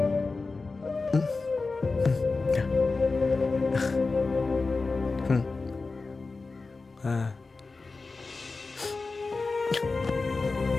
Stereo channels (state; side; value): quieter; right; 3.9 dB